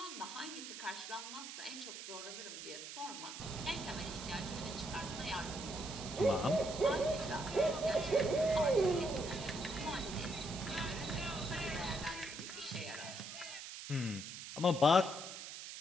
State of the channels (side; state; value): right; noise; hiss, 9 dB below the sound